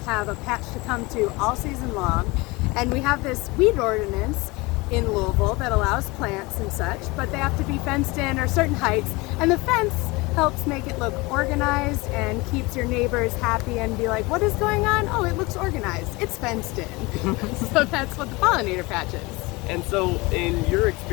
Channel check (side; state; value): right; quieter; 24.0 dB